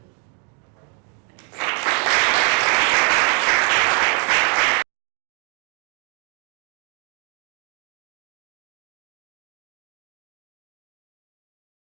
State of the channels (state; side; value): quieter; left; 37.0 dB